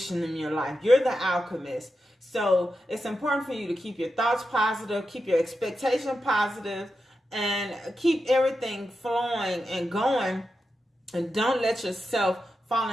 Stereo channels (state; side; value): normal; both; correlation 0.89